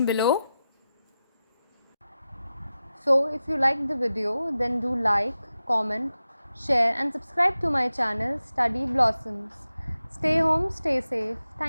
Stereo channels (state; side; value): inverted; both; correlation -0.93